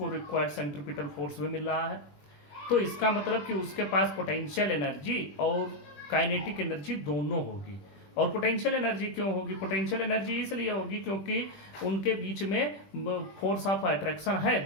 रिक्वायर्ड सेंट्रीपिटल फोर्स भी मिल रहा है। तो इसका मतलब कि उसके पास पोटेंशियल एनर्जी और काइनेटिक एनर्जी दोनों होगी। और पोटेंशियल एनर्जी क्यों होगी? पोटेंशियल एनर्जी इसलिए होगी क्योंकि उनके बीच में फोर्स ऑफ अट्रैक्शन है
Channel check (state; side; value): late; right; 20 ms